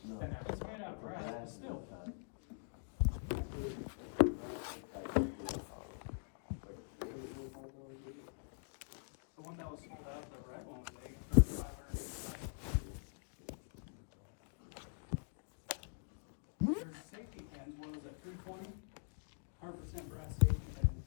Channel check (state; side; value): silent; right; digital silence